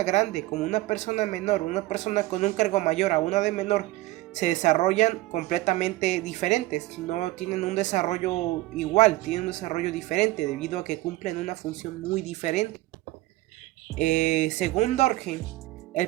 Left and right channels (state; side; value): quieter; left; 18.2 dB